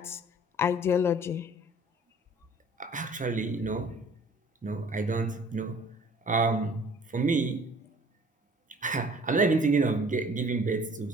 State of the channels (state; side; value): normal; both; correlation 0.52